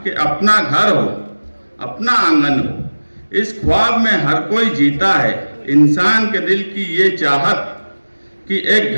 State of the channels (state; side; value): inverted; both; correlation -1.00